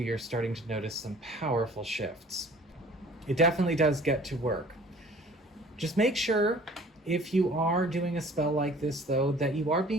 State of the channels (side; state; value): both; normal; correlation 0.50